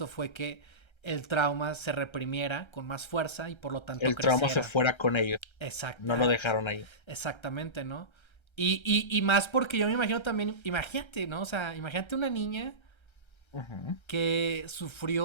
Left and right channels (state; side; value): late; right; 1.3 ms